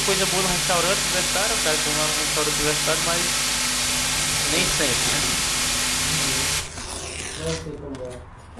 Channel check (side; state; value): both; identical; correlation 1.00